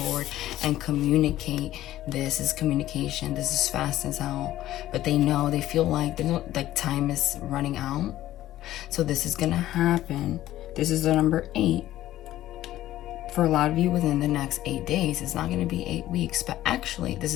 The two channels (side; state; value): right; quieter; 14.2 dB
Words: and communicate. This is communication. This is fast as hell. But they know, they feel like time is running out. So this is going to happen. This is the number 8. For a lot of you within the next 8 days. It's not going to be 8 weeks. But actually, this